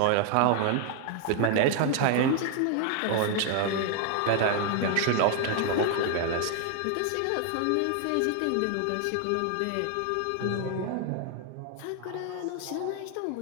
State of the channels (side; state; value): both; different; correlation 0.00